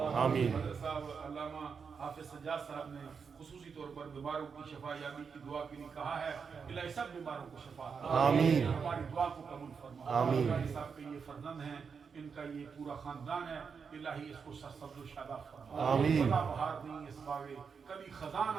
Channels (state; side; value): quieter; left; 5.9 dB